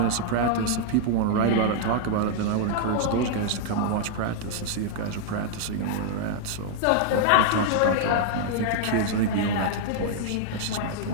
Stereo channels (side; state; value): both; different; correlation -0.01